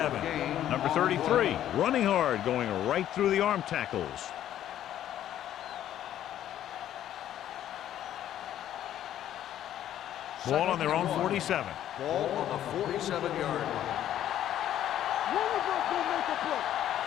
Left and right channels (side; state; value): right; quieter; 11.5 dB